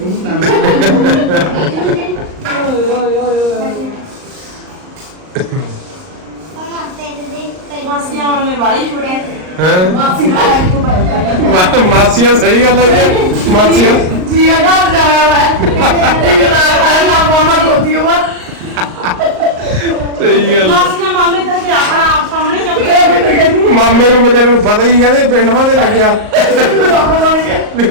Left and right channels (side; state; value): left; late; 38 ms